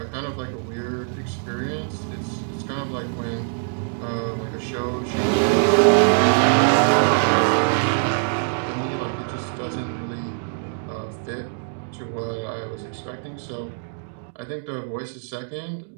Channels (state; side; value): silent; left; 63 dB below the other